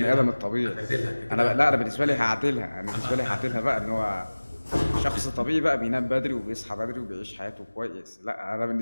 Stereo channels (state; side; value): inverted; both; correlation -1.00